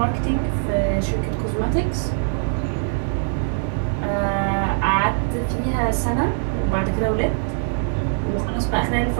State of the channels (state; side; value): silent; left; digital silence